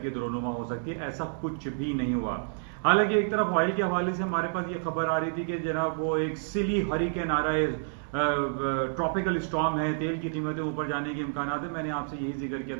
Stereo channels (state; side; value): silent; left; digital silence